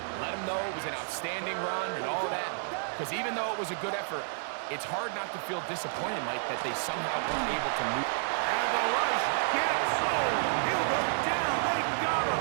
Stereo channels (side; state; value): left; silent; digital silence